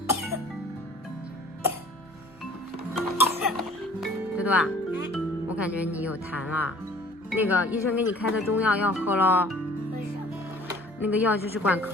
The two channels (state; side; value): normal; both; correlation 0.51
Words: 多多啊，我感觉你有痰了。那个医生给你开的中药要喝咯。为什么？那个药就是管